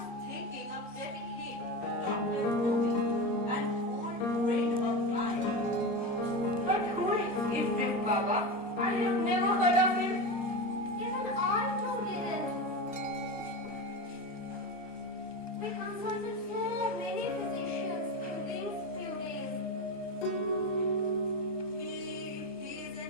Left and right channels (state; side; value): normal; both; correlation 0.21